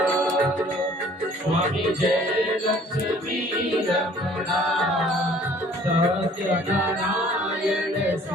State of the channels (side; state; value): both; normal; correlation 0.54